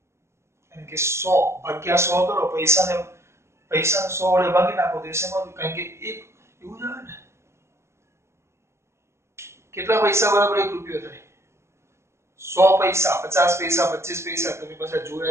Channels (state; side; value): late; left; 0.13 ms